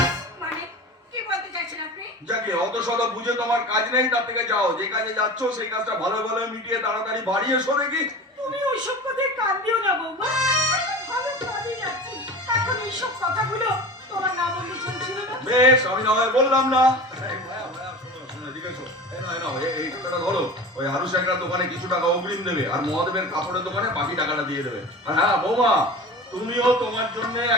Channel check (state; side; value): normal; both; correlation 0.34